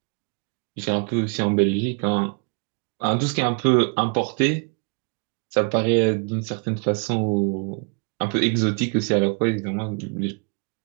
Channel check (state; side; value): quieter; left; 35.9 dB